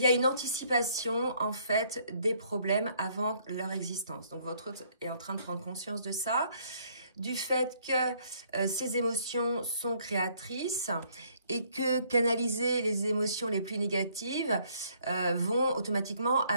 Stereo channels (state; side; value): inverted; both; correlation -0.65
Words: a une anticipation, en fait, des problèmes avant leur existence. Donc, votre autre est en train de prendre conscience de ça, du fait que ces émotions sont créatrices et que canaliser les émotions les plus négatives vont automatiquement